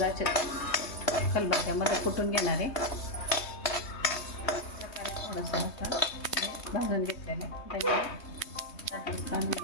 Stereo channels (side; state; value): right; late; 3.2 ms